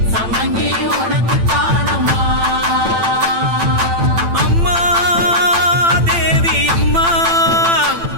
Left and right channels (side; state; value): left; late; 8.9 ms